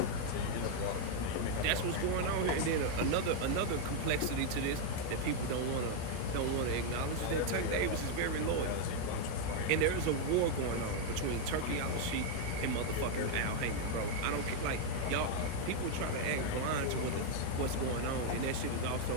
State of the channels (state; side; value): different; both; correlation 0.00